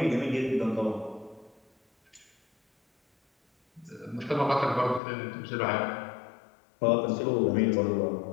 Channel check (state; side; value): drops out; right; at 5.0 s